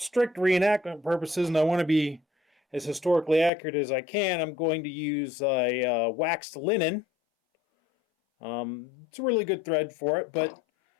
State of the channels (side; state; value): right; drops out; at 3.5 s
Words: reenactment purposes and I want to be as historically accurate as I can, I'm going to use a waxed linen. It's a really good thread for it, but